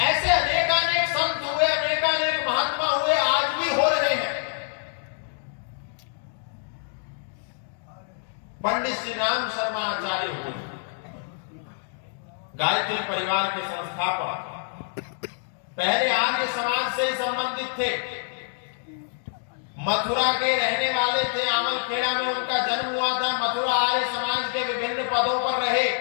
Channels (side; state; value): right; silent; digital silence